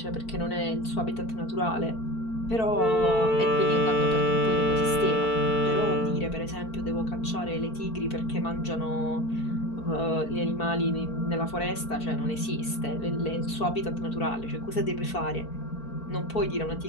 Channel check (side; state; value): right; late; 4.5 ms